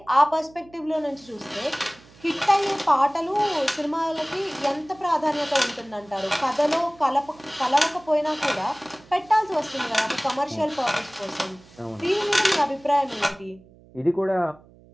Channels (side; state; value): right; noise; hum, 25 dB below the sound